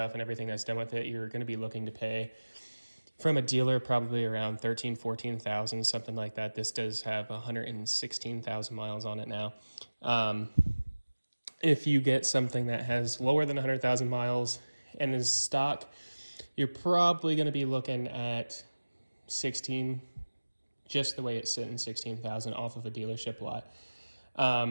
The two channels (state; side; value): inverted; both; correlation -1.00